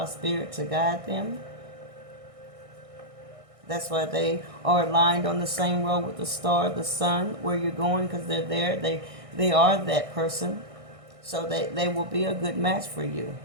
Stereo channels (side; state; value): left; late; 1.6 ms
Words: spirit to guide them. That's why they are aligned on the same road with the star, the sun, where you're going, because they're there. They are that person. So they will be a good match for you.